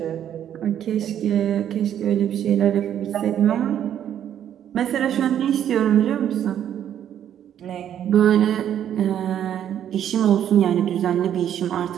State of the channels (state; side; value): quieter; left; 10.1 dB